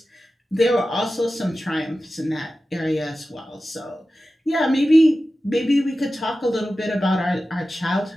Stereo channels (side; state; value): both; normal; correlation 0.94